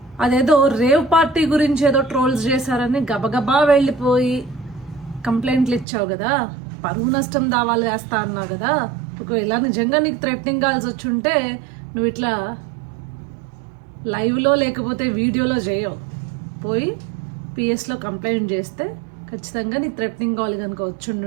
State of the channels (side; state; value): left; drops out; at 5.9 s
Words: అదేదో రేవ్ పార్టీ గురించి ఏదో ట్రోల్స్ చేశారని గబగబా వెళ్ళిపోయి కంప్లైంట్లు ఇచ్చావు కదా, పరువు నష్టం దావాలు వేస్తా అన్నావు కదా. ఒకవేళ నిజంగా నీకు థ్రెటనింగ్ కాల్స్ వచ్చుంటే నువ్వు ఇట్లా లైవ్లో లేకపోతే వీడియోలో చేయవు, పోయి పిఎస్లో కంప్లైంట్ చేస్తే ఖచ్చితంగా నీ థ్రెటనింగ్ కాల్ కనుక